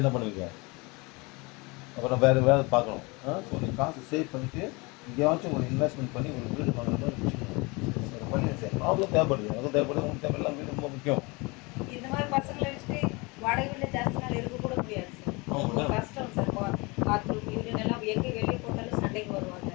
பண்ணுவீங்க? அப்புறம் வேறு வேலை பார்க்கணும். ஸோ நீங்கள் காசு சேவ் பண்ணிவிட்டு எங்கேயாச்சும் ஒரு இன்வெஸ்ட்மெண்ட் பண்ணி ஒரு வீடு வாங்குற மாதிரி வச்சுக்கணும். ஒரு வழியை செய்யணும். அவ்வளோ தேவைப்படுது. அவ்வளோ தேவைப்படுது. உங்களுக்கு தேவையெல்லாம் வீடு ரொம்ப முக்கியம். இந்த மாதிரி பசங்களை வச்சுட்டு வாடகை வீட்டில் ஜாஸ்தி நாள் இருக்க கூட முடியாது சார். ரொம்ப கஷ்டம் சார். பாத்ரூம் யூரின் எல்லாம் எங்கே வெளியே போட்டாலும் சண்டைக்கு வருவாங்க.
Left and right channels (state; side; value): quieter; right; 26.7 dB